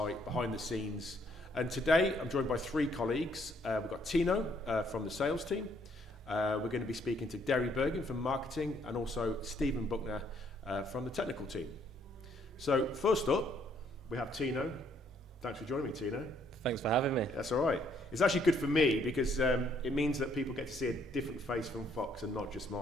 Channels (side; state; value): both; normal; correlation 0.68